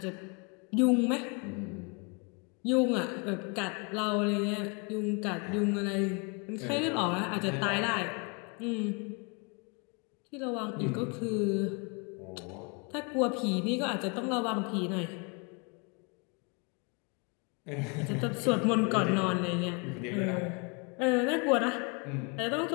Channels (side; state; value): right; quieter; 32.5 dB